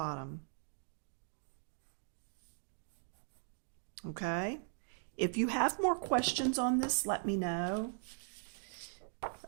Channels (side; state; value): left; silent; digital silence